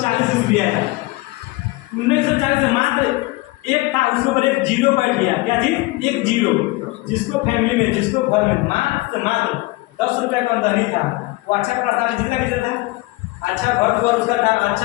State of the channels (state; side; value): quieter; right; 21.3 dB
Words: ईस्वी आया। 1940 में मात्र एक था, उसके ऊपर एक जीरो बैठ गया। क्या चीज? एक जीरो। जिसको फैमिली में, जिसको घर में मात्र 10 रुपया का आमदनी था, वो अच्छा प्रस्ताव जितना कितना था, अच्छा घर द्वार उसका था,